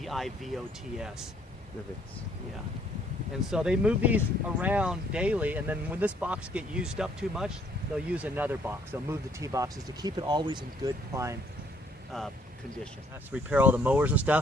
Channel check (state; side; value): normal; both; correlation 0.63